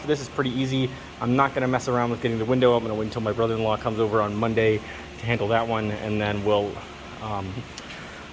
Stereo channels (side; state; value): both; identical; correlation 1.00